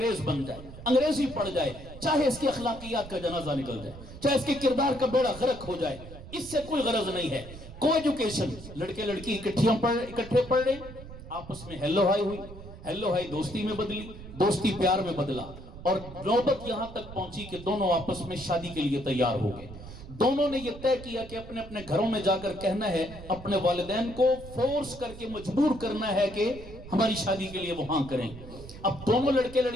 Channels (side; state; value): right; noise; rumble, 14 dB below the sound